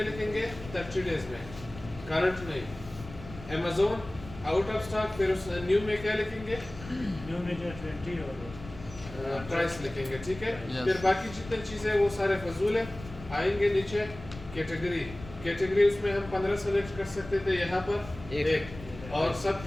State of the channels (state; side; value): noise; left; rumble, 15 dB below the sound